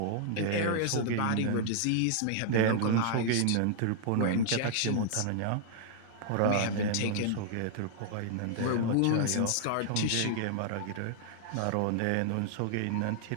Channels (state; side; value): different; both; correlation -0.01